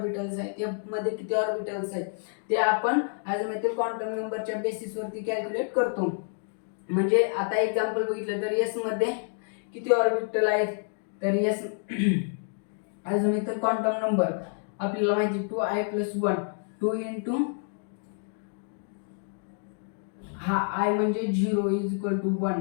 आहेत, एफ मध्ये किती ऑर्बिटल्स आहेत ते आपण अझिमुथल क्वांटम नंबरच्या बेसिसवरती कॅल्क्युलेट करतो. म्हणजे आता एक्झाम्पल बघितलं तर एस मध्ये किती ऑर्बिटल आहेत, तर एस अझिमुथल क्वांटम नंबर आपल्याला माहिती 2I+1. 2 इंटू हा आय म्हणजे 0 इज इक्वल टू 1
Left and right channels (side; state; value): right; silent; 59 dB below the other